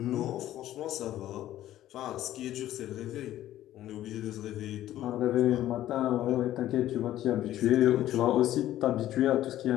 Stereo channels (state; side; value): quieter; right; 13.3 dB